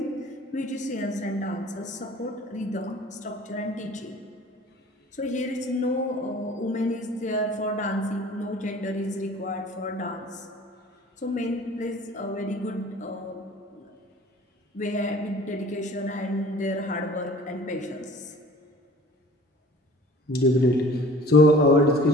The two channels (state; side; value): normal; both; correlation 0.47